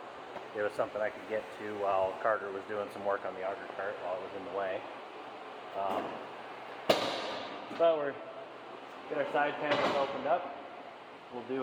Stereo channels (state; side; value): identical; both; correlation 1.00